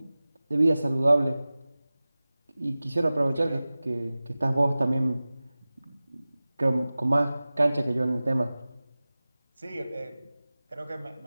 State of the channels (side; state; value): both; inverted; correlation -0.97